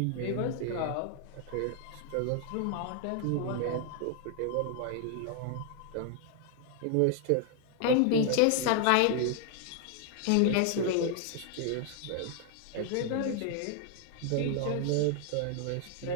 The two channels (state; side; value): different; both; correlation 0.00